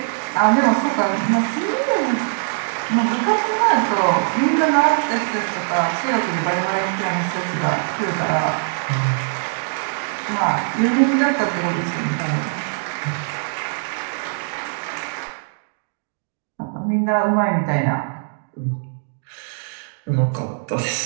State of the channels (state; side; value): silent; left; digital silence